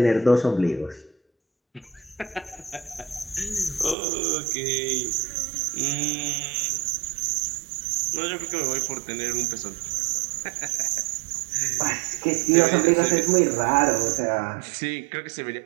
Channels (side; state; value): left; drops out; at 4.0 s